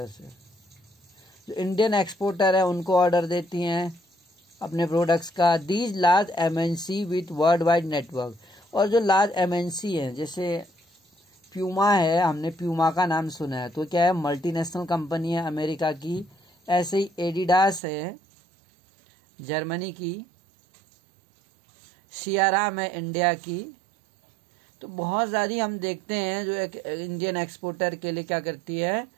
से। जो इंडियन एक्सपोर्टर है उनको ऑर्डर देती हैं अपने प्रोडक्ट्स का। These large MNC with world wide network, और जो लार्ज एमएनसी हैं जैसे प्यूमा है, हमने प्यूमा का नाम सुना है, तो क्या है मल्टीनेशनल कंपनी है अमेरिका की। ऐसे ही एडिडास है जर्मनी की, सियाराम है इंडिया की। तो बहुत ज़्यादा हम देखते हैं जो एक इंडियन एक्सपोर्टर के लिए क्या करती है,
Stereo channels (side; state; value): left; drops out; at 17.8 s